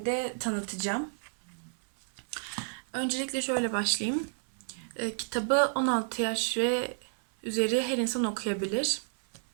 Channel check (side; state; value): left; silent; 57 dB below the other